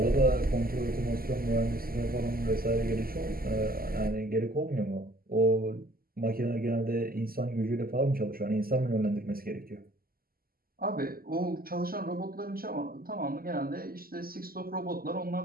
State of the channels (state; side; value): late; left; 0.42 ms